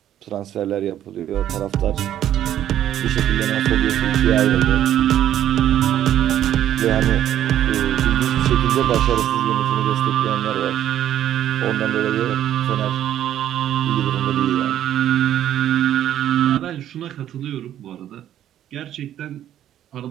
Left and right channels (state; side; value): quieter; left; 11.4 dB